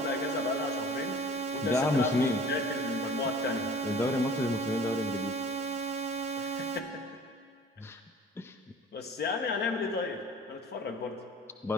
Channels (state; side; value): normal; both; correlation 0.46